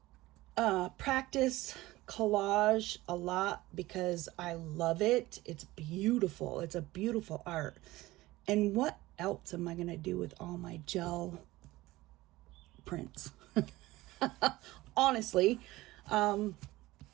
to practice collage a lot because I love it. It's beautiful. It's a beautiful art. And what else am I going to do with all my gel prints? Honestly, you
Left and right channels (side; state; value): left; quieter; 18.5 dB